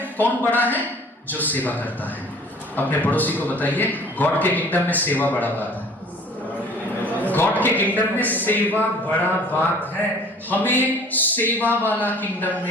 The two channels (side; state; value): both; normal; correlation 0.50